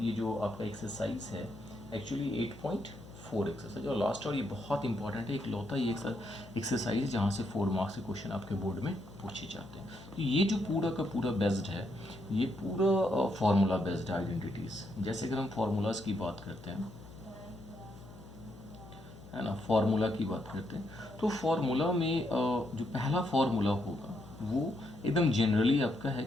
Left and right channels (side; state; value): left; noise; hum, 18 dB below the sound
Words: जो आपका एक्सरसाइज है एक्चुअली 8.4 एक्सरसाइज और लास्ट और ये बहुत इंपॉर्टेंट है। एक लौता ये एक्सरसाइज जहाँ से 4 मार्क्स के क्वेश्चन आपके बोर्ड में पूछे जाते हैं। तो ये जो पूरा का पूरा बेस्ड है, ये पूरा फार्मूला बेस्ड आइडेंटिटीज़। जैसे अगर हम फार्मूलाज की बात करते हैं, है ना, फार्मूला की बात करते हैं तो फार्मूला में जो पहला फार्मूला होगा वो एकदम जनरली आपका है